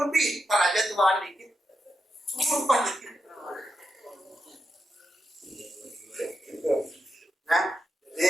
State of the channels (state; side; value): normal; both; correlation 0.86